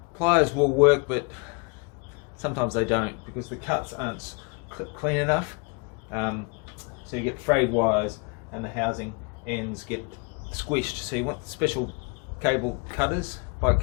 Pliers will work, but sometimes they don't because the cuts aren't clean enough. So you get frayed wires and the housing ends get squished. So you want special cable cutters, bike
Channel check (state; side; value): quieter; right; 33.2 dB